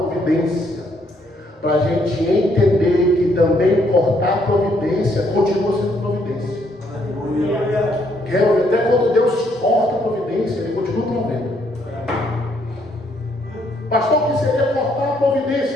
Para a gente entender que também cortar a providência continua sendo providência. Até quando Deus corta a providência, Ele continua provendo. Pastor, o que seria cortar a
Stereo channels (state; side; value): normal; both; correlation 0.70